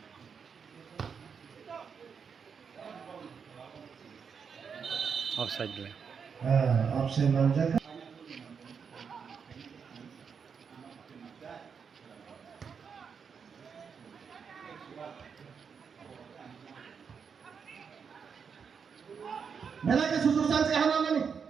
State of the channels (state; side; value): quieter; left; 6.4 dB